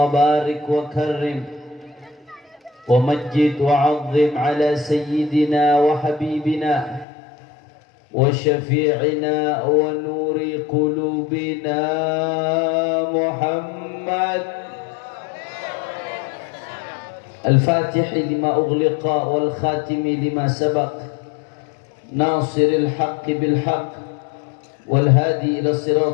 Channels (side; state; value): right; drops out; at 7.1 s